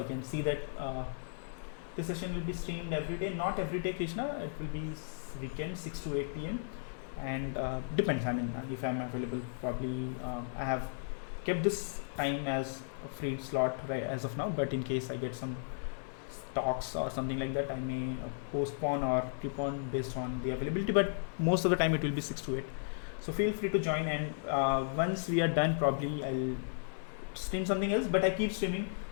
can see that this session will be streamed every day. Not every day, Krishna, it will be weekend 6 to 8 p.m. and depends. I mean, if I'm available, probably I have kept this time as a free slot right as of now, but in case I get some talks or something like that, I may postpone or keep on based on the availability, but most of the time it will be 6 to 8. So feel free to join, and once we are done, probably I'll stream something else, but I keep streaming.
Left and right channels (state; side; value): silent; right; digital silence